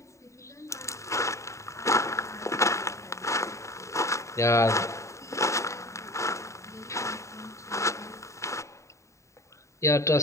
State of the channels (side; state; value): right; late; 0.14 ms